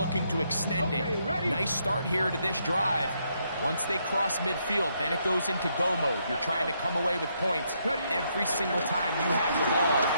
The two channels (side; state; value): both; inverted; correlation -0.75